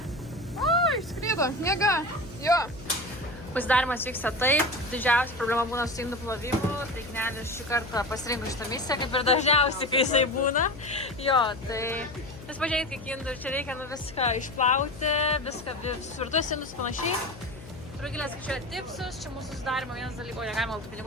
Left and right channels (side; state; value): left; noise; hum, 16 dB below the sound